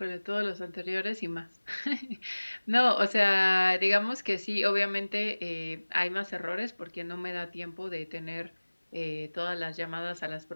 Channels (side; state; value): both; inverted; correlation -1.00